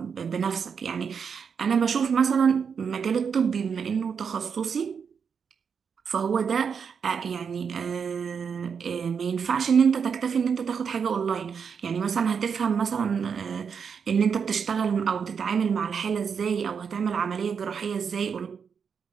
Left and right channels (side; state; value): left; quieter; 6.5 dB